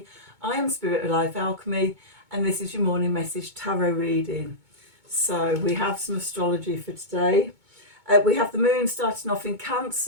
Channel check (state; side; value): late; left; 2.2 ms